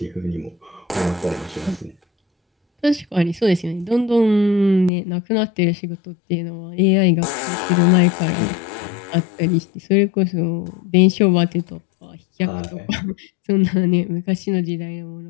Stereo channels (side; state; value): right; drops out; at 4.9 s